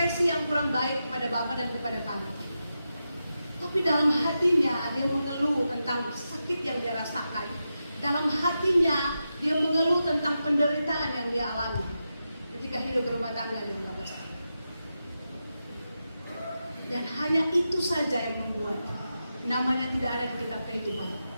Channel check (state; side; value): inverted; both; correlation -0.89